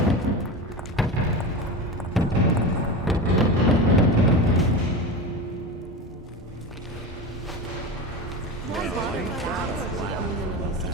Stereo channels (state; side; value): normal; both; correlation 0.25